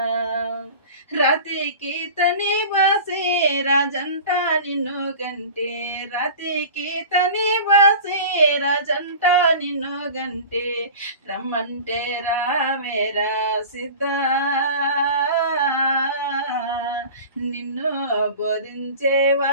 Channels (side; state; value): both; inverted; correlation -0.37